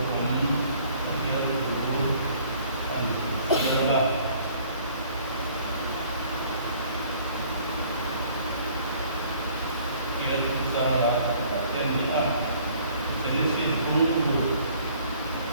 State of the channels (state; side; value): inverted; both; correlation -0.57